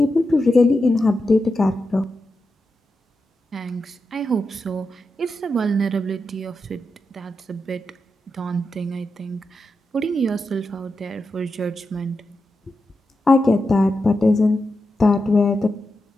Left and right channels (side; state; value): both; normal; correlation 0.88